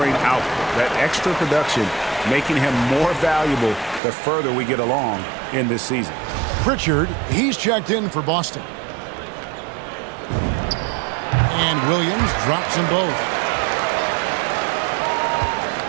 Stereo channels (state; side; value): drops out; left; at 4.0 s